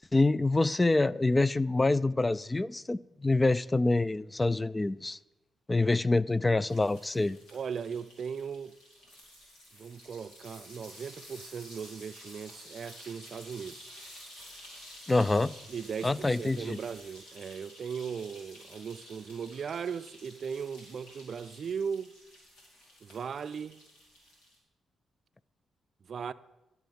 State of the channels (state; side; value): normal; both; correlation 0.95